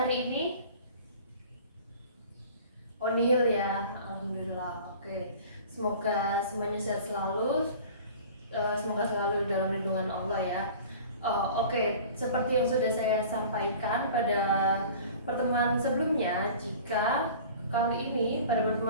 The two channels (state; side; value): inverted; both; correlation -0.43